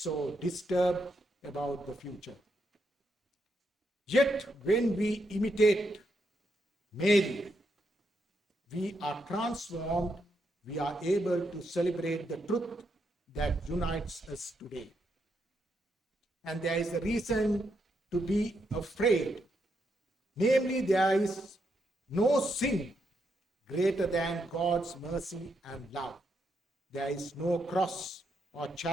disturbed about the future. Yet, when we imitate Mary, we are transformed, we are able to celebrate the truth that unites us today. And there is a reason to be afraid. Namely, there is no sin greater than God's mercy and love. There is no cross or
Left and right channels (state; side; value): normal; both; correlation 0.80